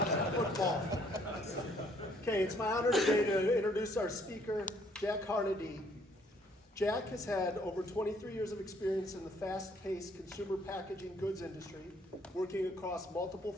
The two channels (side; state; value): both; normal; correlation 0.64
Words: Football. Okay, it's my honor today to introduce our speaker, Jack Harnedy. Jack has had over 23 years of experience in the fast-paced consumer packaging goods industry, working across multiple